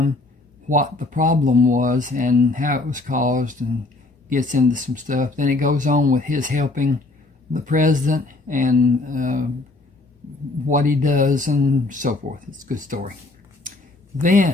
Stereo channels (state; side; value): quieter; right; 3.1 dB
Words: what the problem was and how it was caused, and gets into some stuff. Then it goes on with his helping the president and what he does and so forth. It's a good story.